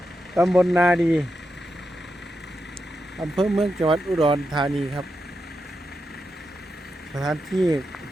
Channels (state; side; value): normal; both; correlation 0.87